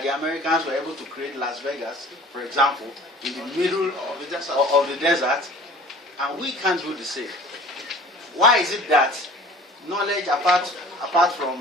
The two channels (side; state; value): both; normal; correlation 0.46